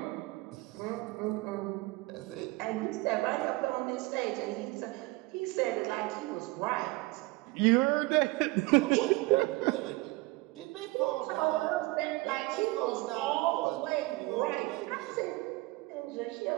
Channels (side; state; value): left; quieter; 22.6 dB